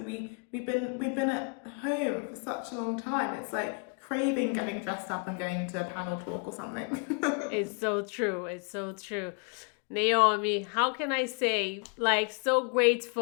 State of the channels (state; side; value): quieter; right; 36.4 dB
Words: been at home for such a long time. It's like craving getting dressed up and going to a panel talk or something. It's so true. Naomi, how can I say, so